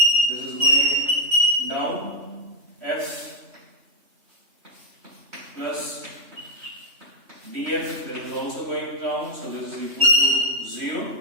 this is going down, F plus df, that is also going down, so this is equal to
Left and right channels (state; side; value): late; left; 3.1 ms